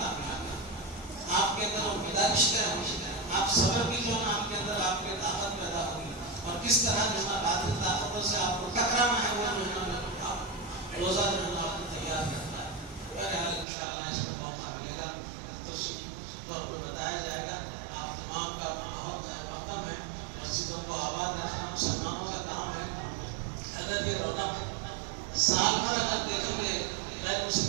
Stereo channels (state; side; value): drops out; left; at 13.7 s